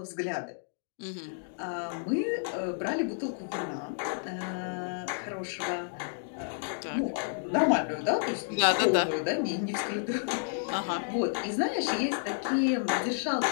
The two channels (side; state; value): right; silent; digital silence